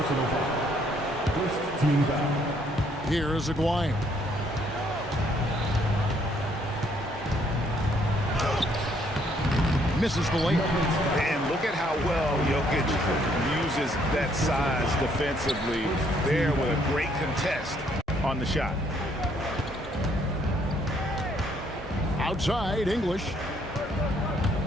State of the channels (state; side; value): normal; both; correlation 0.67